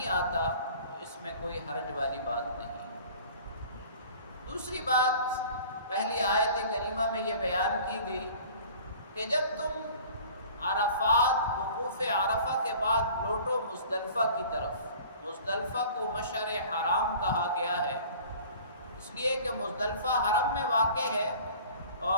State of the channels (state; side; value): inverted; both; correlation -0.46